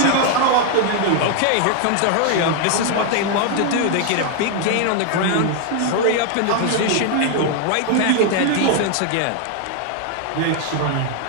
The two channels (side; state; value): both; different; correlation 0.00